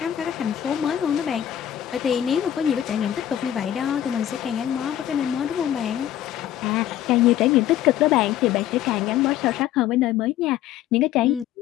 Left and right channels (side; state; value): right; quieter; 11.5 dB